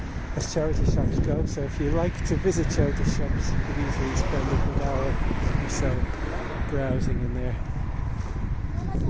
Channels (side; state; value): both; identical; correlation 1.00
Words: as charity shops go, so if you like to visit charity shops you could easily spend a good hour or so browsing in there.